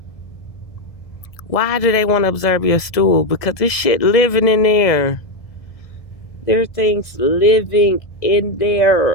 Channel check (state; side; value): late; right; 1.7 ms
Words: Why do they want to observe your stool? Because this shit living in there. There are things living in